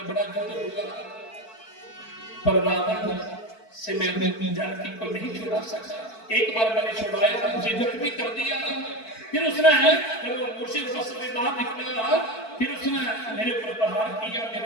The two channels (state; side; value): late; right; 4.5 ms